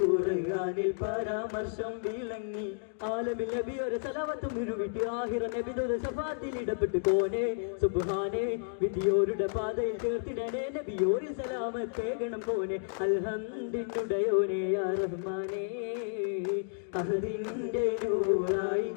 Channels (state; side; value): silent; right; digital silence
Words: ഖുർആനിൽ പരാമർശം വിളങ്ങി ആലമിൽ നബി ഒരു സലവത്തും വിരുവിട്ട് ആഹിറ നബിയുടെ ശഫാത്തിൽ ഇടപെട്ട് കോനെ സുബ്ഹാനേ വിധിയോരുടെ പാതയിൽ ചേർത്തിടണേ നബിയോരിൽ സലാമത്തേകണം കോനെ അൽഹംദിനുടയോനെ യാ റഹ്മാനേ അഹദിന്റെ നൂറായി